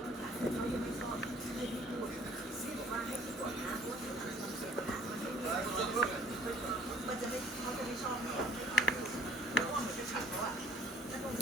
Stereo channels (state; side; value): normal; both; correlation 0.54